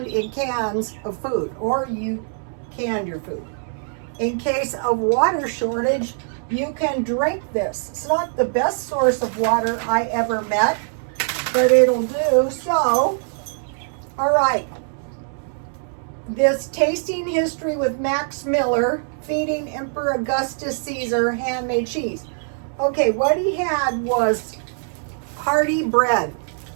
in cans of food, or you canned your food. In case of water shortage, you can drink this. It's not the best source of water I ever met, but it'll do. So, all right. This tasting history with Max Miller, feeding Emperor Augustus Caesar handmade cheese. Okay, what he had was hearty bread.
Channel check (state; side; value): silent; left; 64 dB below the other